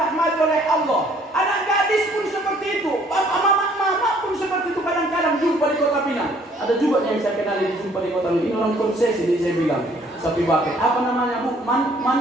oleh Allah. Anak gadis pun seperti itu. Mama pun seperti itu, kadang-kadang jumpa di Kota Pinang. Ada juga yang saya kenal di jumpa di Kota Pinang. Ini orang konsesi, ini saya bilang. Sapi baket. Apa namanya Bu?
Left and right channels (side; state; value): both; normal; correlation 0.61